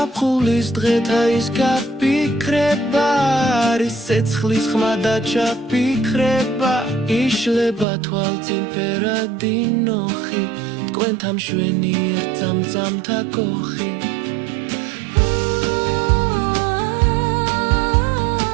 დღეთა ის გაფიქრება არის ცეცხლის ხმა და ჩაფიქრება იშლება თვალწინ ფერადი ნოხი თქვენთა მშვენიერ წამწამთა კოხი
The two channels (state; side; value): drops out; left; at 7.9 s